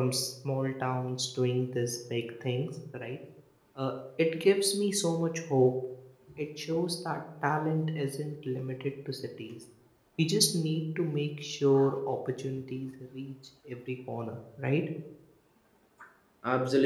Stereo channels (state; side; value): identical; both; correlation 1.00